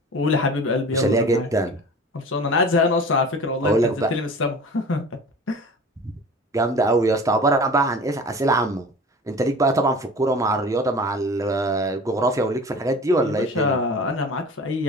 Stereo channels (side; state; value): both; normal; correlation 0.39